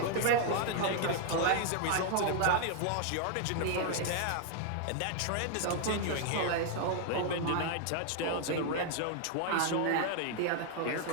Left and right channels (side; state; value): both; different; correlation 0.00